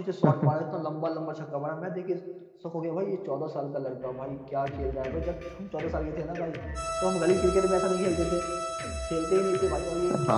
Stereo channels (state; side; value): identical; both; correlation 1.00